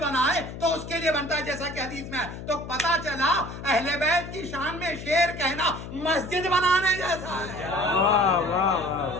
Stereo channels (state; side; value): noise; left; hum, 10 dB below the sound